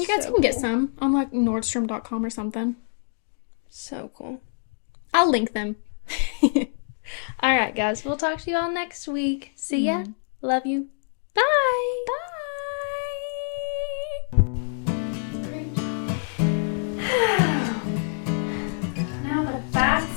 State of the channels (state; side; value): silent; right; 61 dB below the other